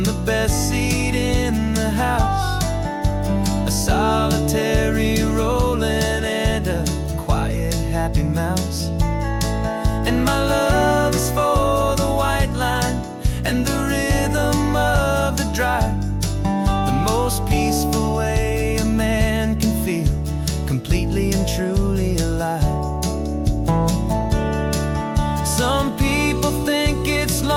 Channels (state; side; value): identical; both; correlation 1.00